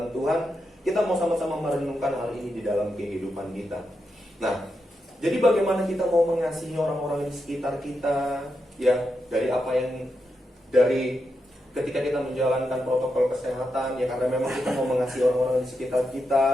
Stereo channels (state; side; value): normal; both; correlation 0.85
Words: Tuhan, kita mau sama-sama merenungkan hal ini di dalam kehidupan kita. Nah, jadi bagaimana kita mau mengasihi orang-orang di sekitar kita, ya dari ketika kita menjalankan protokol kesehatan, ya karena memang kita mau mengasihi orang-orang di sekitar